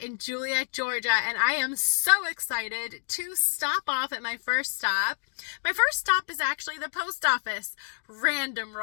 Juliette, Georgia, and I am so excited to stop off at my first stop. My first stop is actually the post office. Random,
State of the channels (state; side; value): silent; right; digital silence